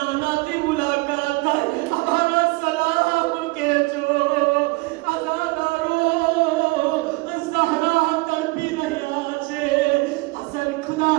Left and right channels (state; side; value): quieter; left; 24.5 dB